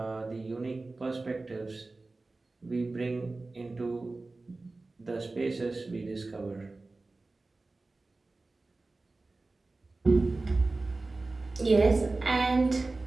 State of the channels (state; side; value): quieter; left; 3.4 dB